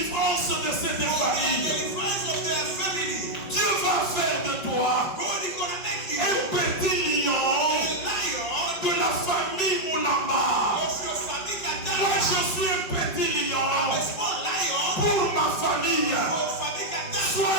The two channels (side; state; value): right; late; 5.4 ms